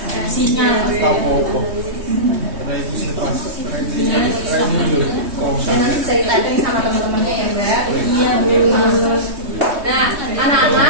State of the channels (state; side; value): late; left; 3.2 ms